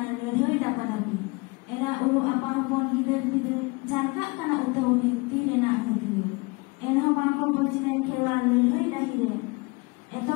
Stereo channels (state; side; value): quieter; right; 27.1 dB